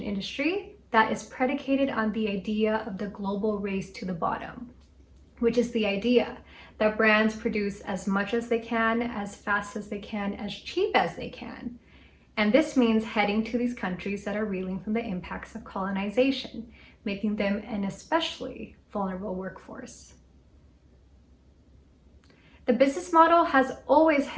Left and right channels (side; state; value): both; identical; correlation 1.00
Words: industry that is predicated on the idea of the global race to the bottom, which is the idea that brands produce as much as they can, as fast as they can, as cheap as they can. And this means heading to these countries that are reeling from the impacts of colonization, making them an especially vulnerable workforce. The business model has always